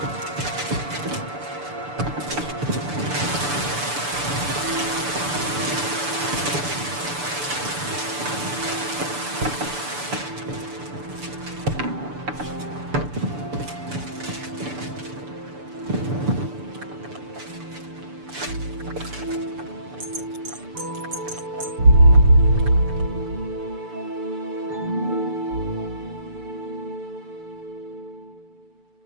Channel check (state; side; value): late; left; 6.9 ms